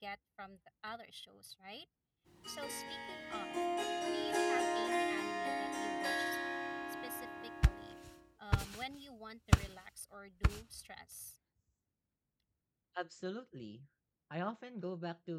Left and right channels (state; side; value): identical; both; correlation 1.00